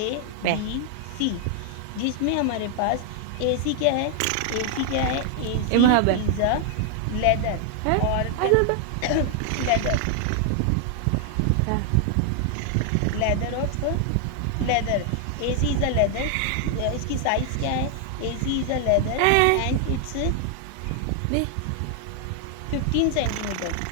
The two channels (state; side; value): different; both; correlation 0.00